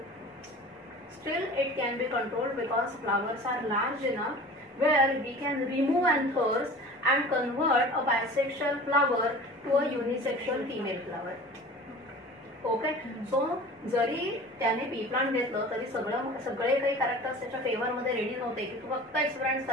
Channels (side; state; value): both; normal; correlation 0.40